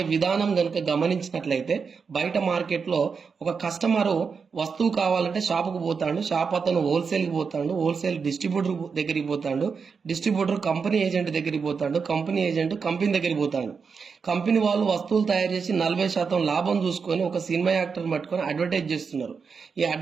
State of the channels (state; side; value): quieter; left; 5.6 dB